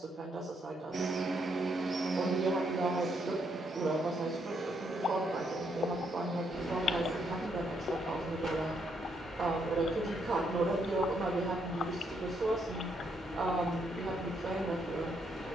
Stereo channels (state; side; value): normal; both; correlation 0.75